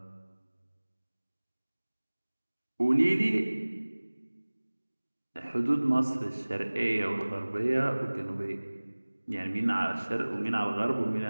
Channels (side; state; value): both; inverted; correlation -1.00